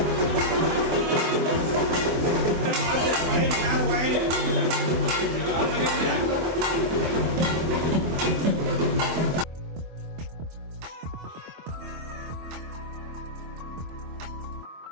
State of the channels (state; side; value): late; left; 24 ms